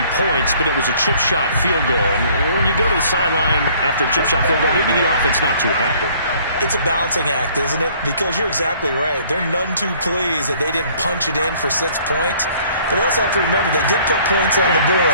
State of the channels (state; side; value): inverted; both; correlation -0.57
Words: points, but it was a chip shot field goal. And when you go to the sideline after a chip shot field goal, maybe the offense not too happy. It's a balancing act, isn't it? Because you're exactly right. They're none too pleased that they didn't punch it in for 6 points. But they also have to remember they did put points on the board.